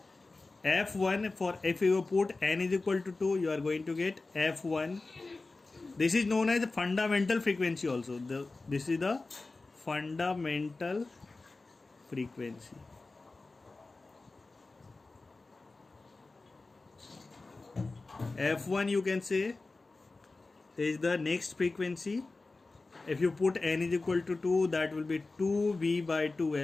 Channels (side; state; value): right; quieter; 3.5 dB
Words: F1, for if you put n is equal to 2, you are going to get F1. This is known as the fundamental frequency also. This is the fundamental frequency. F1 you can say is the next frequency. If you put n is equal to 2, that will be 2V by